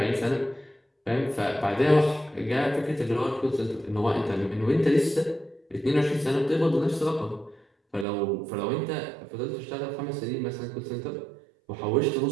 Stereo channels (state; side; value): drops out; left; at 8.1 s